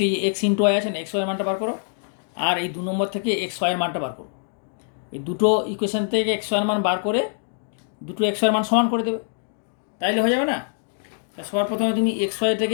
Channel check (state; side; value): silent; right; digital silence